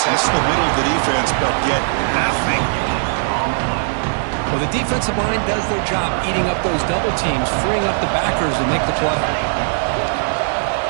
the middle of the defense, but get nothing. Well, the defensive line does their job eating up those double teams, freeing up the backers to make the play.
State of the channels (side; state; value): left; silent; digital silence